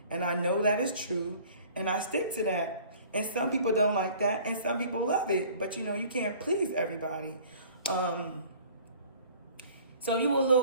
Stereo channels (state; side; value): inverted; both; correlation -0.50